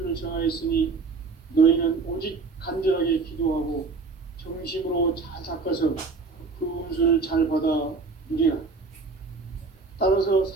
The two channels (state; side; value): quieter; left; 4.3 dB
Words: 정하였으니 너희는 오직 간절하게 기도하고 정심으로 잘 닦아서 그 운수를 잘 받아 누리라. 따라서